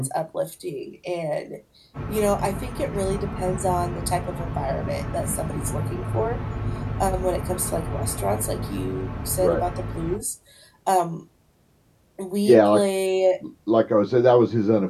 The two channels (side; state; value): both; identical; correlation 1.00